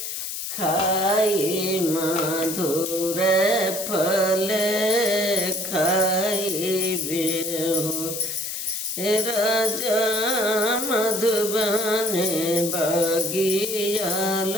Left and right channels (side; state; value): left; noise; hiss, 5 dB below the sound